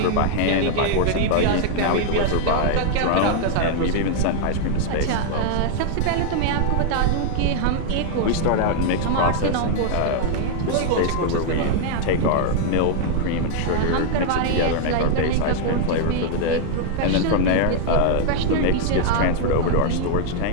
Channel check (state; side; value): different; both; correlation 0.00